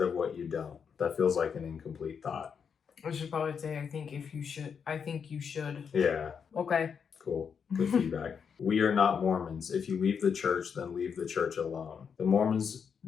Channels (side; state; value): right; quieter; 6.7 dB